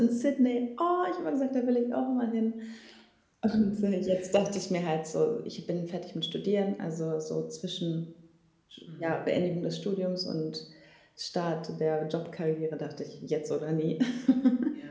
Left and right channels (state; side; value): identical; both; correlation 1.00